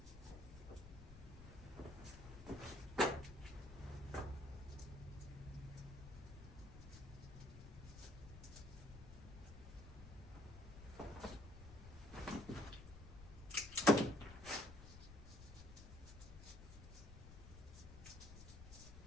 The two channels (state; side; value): noise; left; rumble, 13 dB below the sound